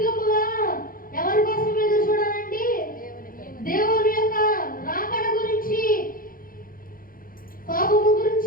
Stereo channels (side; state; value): right; late; 0.41 ms